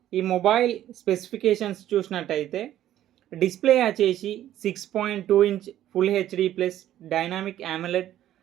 ఈ మొబైల్ స్పెసిఫికేషన్స్ చూసినట్టయితే డిస్ప్లే వచ్చేసి 6.2 inch full HD plus dynamic AMOLED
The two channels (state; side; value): quieter; left; 12.4 dB